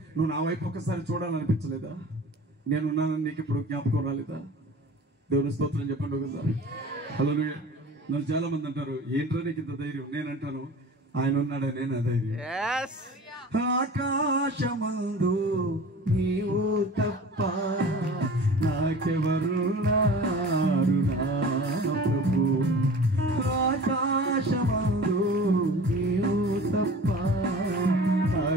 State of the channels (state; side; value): normal; both; correlation 0.41